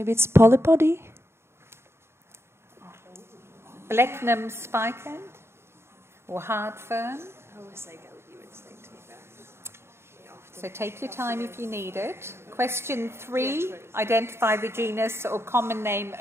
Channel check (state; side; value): late; left; 0.12 ms